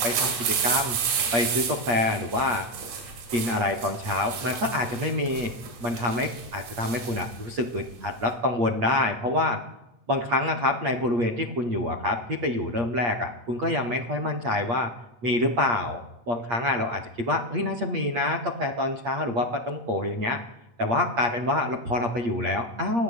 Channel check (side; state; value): left; late; 8.5 ms